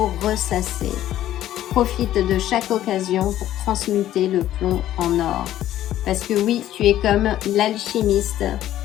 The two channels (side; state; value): right; quieter; 12.8 dB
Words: ressasser. Profite de chaque occasion pour transmuter le plomb en or. Parce que oui, tu es comme l'alchimiste.